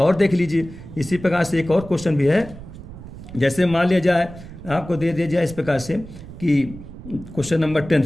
और देख लीजिए, इसी प्रकार से एक और क्वेश्चन भी है। जैसे मान लिया जाए, आपको दे दिया जाए इस प्रकार से कि क्वेश्चन नंबर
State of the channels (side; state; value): right; noise; rumble, 15 dB below the sound